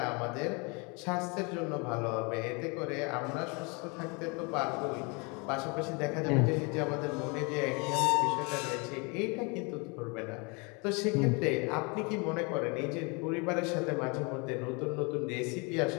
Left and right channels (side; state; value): right; quieter; 30.8 dB